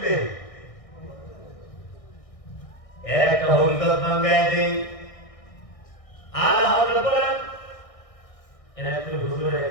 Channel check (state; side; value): late; right; 1.6 ms